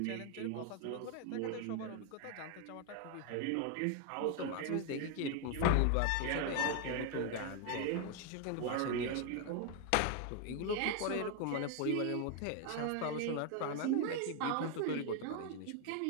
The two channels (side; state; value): both; different; correlation 0.01